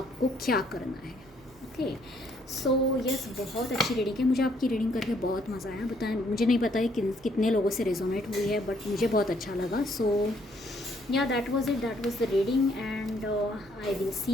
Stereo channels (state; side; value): noise; right; hum, 29 dB below the sound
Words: क्या करना है, ओके। सो यस, बहुत अच्छी रीडिंग है, मुझे आपकी रीडिंग करके बहुत मज़ा आया। बताएं, मुझे नहीं पता है कितने लोगों से रेजोनेट हुई है, बट मुझे बहुत अच्छा लगा। सो या that was it, that was the reading, and I will